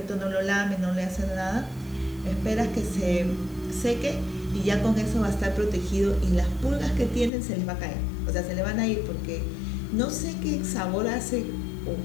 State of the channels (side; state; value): right; drops out; at 7.3 s